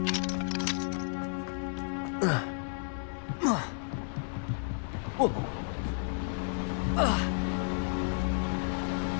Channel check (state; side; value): silent; right; 56 dB below the other